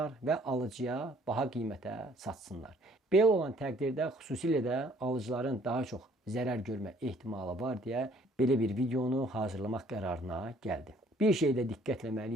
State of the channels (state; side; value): normal; both; correlation 0.59